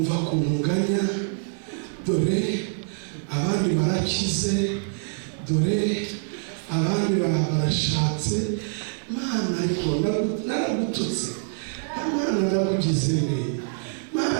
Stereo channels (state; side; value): silent; left; digital silence